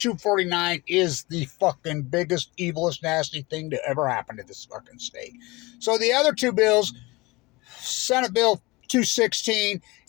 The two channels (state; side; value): quieter; right; 23.0 dB